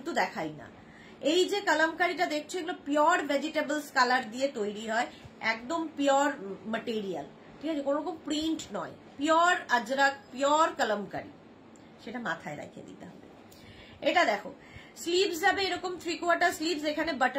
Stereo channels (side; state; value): both; identical; correlation 1.00